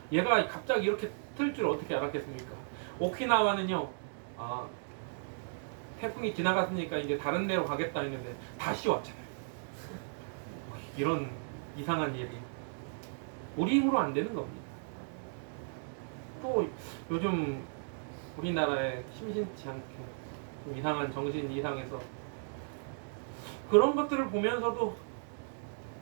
얘가 갑자기 이렇게 틀 줄 어떻게 알았겠습니까? 오키나와는요, 태풍이 지나갔으니까 이제 다른 데로 가겠다 했는데 다시 왔잖아요. 이런 이상한 일이 우리 힘으로 안 되는 겁니다. 또 요즘 우리나라에 심심치 않게 좀 이상한 정신 이상해서 그런 것들을 보면서도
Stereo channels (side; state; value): left; silent; digital silence